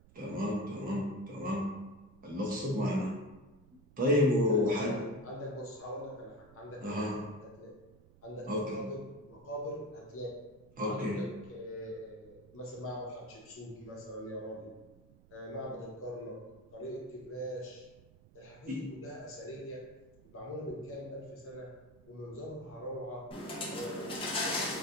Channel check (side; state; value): right; noise; rumble, 24 dB below the sound